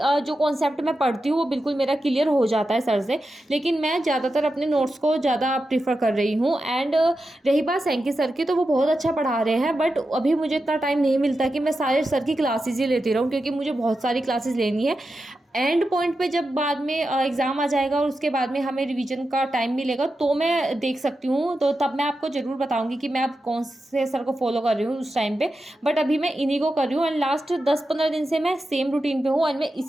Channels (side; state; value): both; normal; correlation 0.90